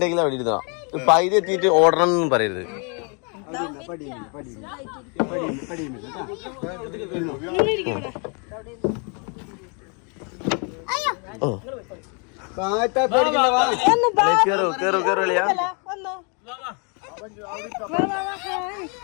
അവിടെ ഇരുന്നോ. പൈതി എത്തിയിട്ട് ഓടണം എന്നൊന്നും പറയരുത്. ഓ കേറോ കേറോ കേറോളിയാ.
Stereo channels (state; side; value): quieter; right; 35.9 dB